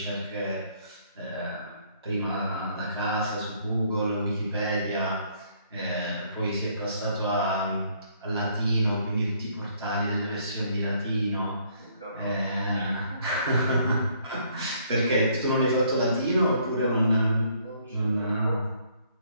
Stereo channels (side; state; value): both; inverted; correlation -0.65